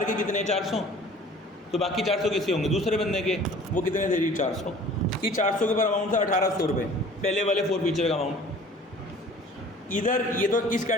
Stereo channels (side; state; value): both; normal; correlation 0.48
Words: के कितने 400, तो बाकी 400 किसके होंगे दूसरे बंदे के, वो कितने थे जी 400। कि 400 के ऊपर अमाउंट था 1800 रुपये, पहले वाले 4 फीचर का अमाउंट। इधर ये तो इस